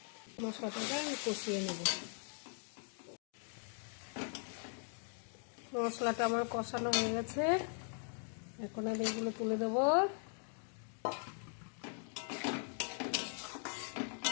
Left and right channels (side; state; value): right; silent; 51 dB below the other